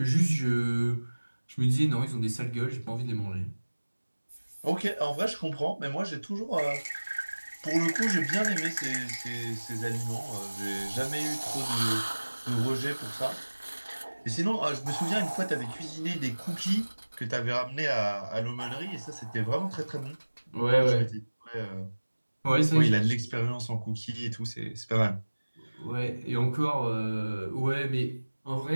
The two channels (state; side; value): inverted; both; correlation -1.00